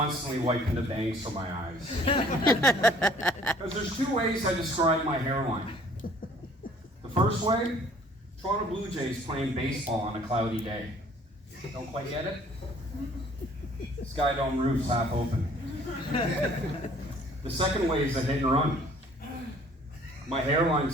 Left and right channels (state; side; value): normal; both; correlation 0.56